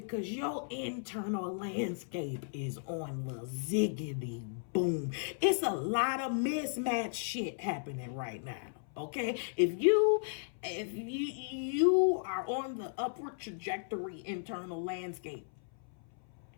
your internal landscape is on the ziggity boom. It's a lot of mismatched shit happening right now. Okay, if you are on the upward trajectory internal landscape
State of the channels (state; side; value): silent; right; 54 dB below the other